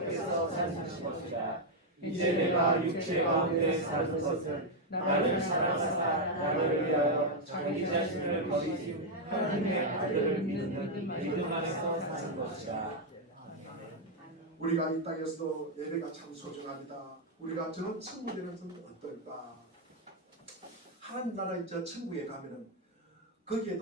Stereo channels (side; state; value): both; normal; correlation 0.00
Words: 사시는 것이다. 이제 내가 육체 가운데 사는 것을 나를 사랑하사 나를 위하여 자기 자신을 버리신 하나님의 아들을 믿는 믿음 안에서 사는 것이다. 우리가 이 땅에서도 예배가 참 소중합니다. 우리가 저 천국에 가서는 어떨까? 하나님 나라의 저 천국에 가면은